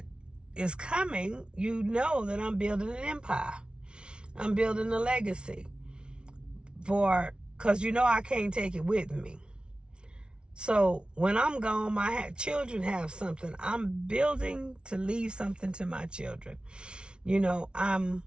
is coming, you know that I'm building an empire. I'm building a legacy because I can't take it with me. So when I'm gone, my children have something. I'm building to leave something to my children. I'm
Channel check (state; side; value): late; left; 0.056 ms